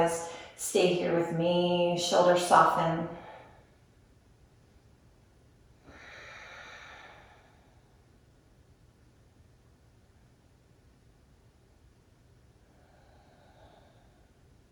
stay here with me, shoulders soften.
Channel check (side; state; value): both; identical; correlation 1.00